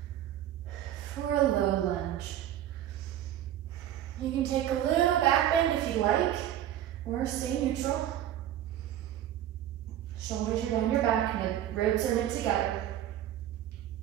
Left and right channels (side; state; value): left; quieter; 11.7 dB